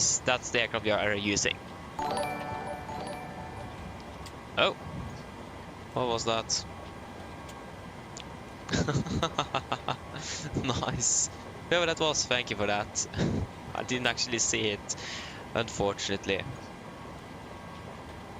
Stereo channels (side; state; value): both; identical; correlation 1.00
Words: the aircraft we are using. Oh, what was that? Nice. Whoever that was, thank you for that. I didn't actually see it, unfortunately.